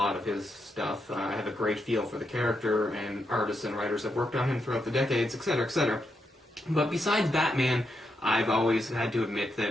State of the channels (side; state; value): both; normal; correlation 0.82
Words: of his stuff. I have a great feel for the character, and artists and writers have worked on him throughout the decades, etc., etc. But besides Batman, I've always had to admit